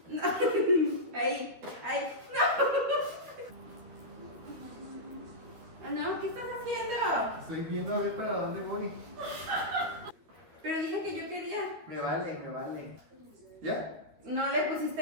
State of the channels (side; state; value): left; late; 13 ms